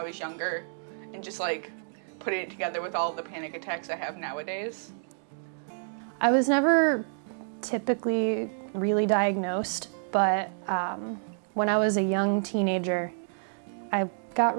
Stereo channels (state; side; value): silent; left; digital silence